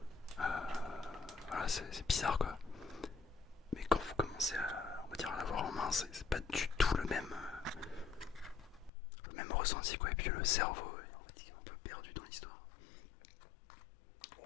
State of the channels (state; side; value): drops out; right; at 8.9 s